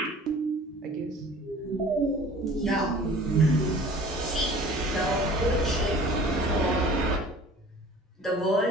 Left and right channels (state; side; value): normal; both; correlation 0.46